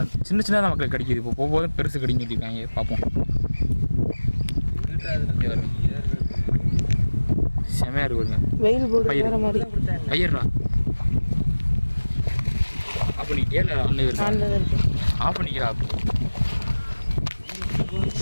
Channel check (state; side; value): inverted; both; correlation -1.00